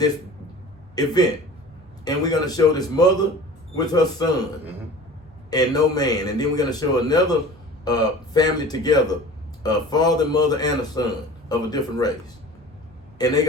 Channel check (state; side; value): normal; both; correlation 0.41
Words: event, and we're gonna show this mother with her son, Mm-hmm. and no man, and then we're gonna show another family together, a father, mother, and a son of a different race, and they're